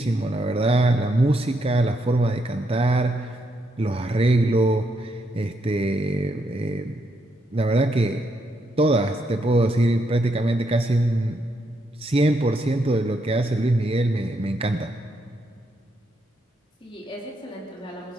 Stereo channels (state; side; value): normal; both; correlation 0.78